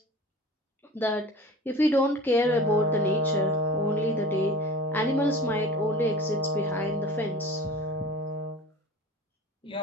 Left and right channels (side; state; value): both; normal; correlation 0.38